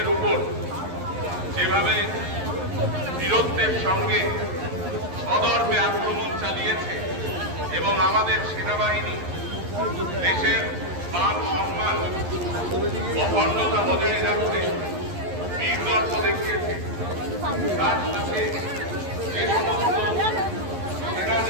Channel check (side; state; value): left; late; 11 ms